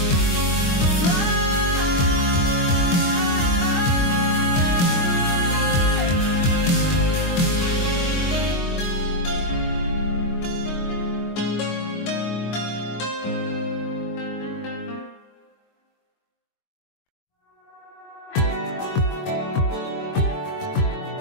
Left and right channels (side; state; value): right; late; 22 ms